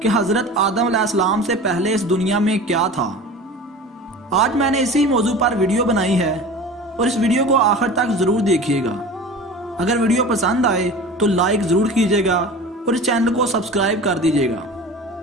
हज़रत आदम अलैहिस्सलाम से पहले इस दुनिया में क्या था। आज मैंने इसी मौजू पर वीडियो बनाई है और इस वीडियो को आखिर तक ज़रूर देखिएगा। अगर वीडियो पसंद आए तो लाइक ज़रूर कीजिएगा और इस चैनल को सब्सक्राइब कर दीजिएगा।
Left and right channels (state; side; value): normal; both; correlation 0.36